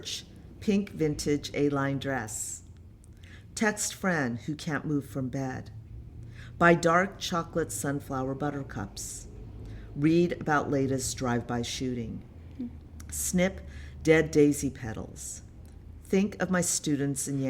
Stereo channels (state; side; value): identical; both; correlation 1.00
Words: pink vintage A-line dress. Text friend who can't move from bed. Buy dark chocolate sunflower buttercups. Read about latest drive-by shooting. Snip dead daisy petals. Think of my students in